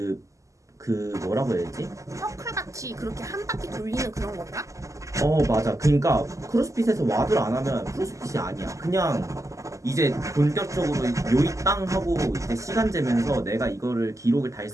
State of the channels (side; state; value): left; late; 0.16 ms